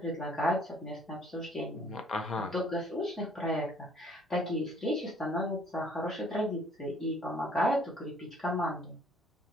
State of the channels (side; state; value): both; normal; correlation 0.59